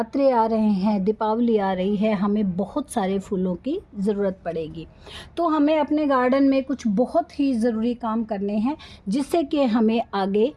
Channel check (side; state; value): both; identical; correlation 1.00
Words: आ रहे हैं, दीपावली आ रही है, हमें बहुत सारे फूलों की ज़रूरत पड़ेगी। तो हमें अपने गार्डन में कुछ बहुत ही ज़रूरी काम करने हैं जिससे कि हमें आगे